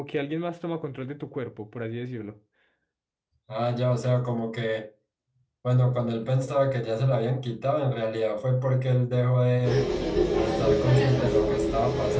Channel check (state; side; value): identical; both; correlation 1.00